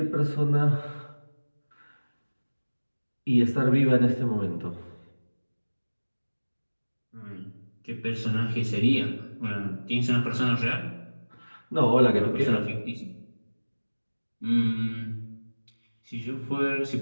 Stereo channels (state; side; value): inverted; both; correlation -1.00